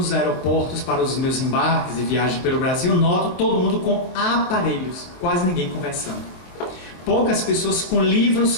aeroportos para os meus embarques e viagens pelo Brasil, noto todo mundo com aparelhos, quase ninguém conversando. Poucas pessoas com livros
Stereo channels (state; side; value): late; right; 24 ms